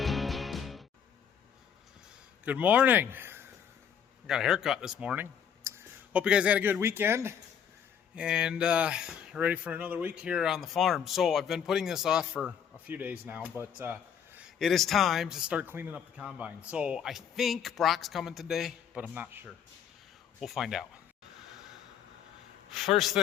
Good morning. I got a haircut this morning. Hope you guys had a good weekend and ready for another week here on the farm. So I've been putting this off for a few days now, but it is time to start cleaning up the combine. So I think Brock's coming today, but I'm not sure. We'll find out. First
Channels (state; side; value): quieter; right; 8.2 dB